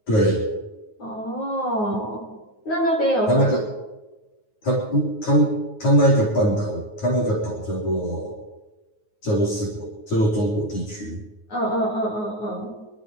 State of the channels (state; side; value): late; right; 9.4 ms